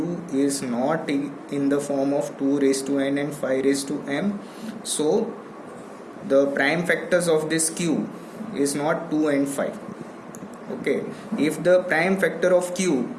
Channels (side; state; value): both; identical; correlation 1.00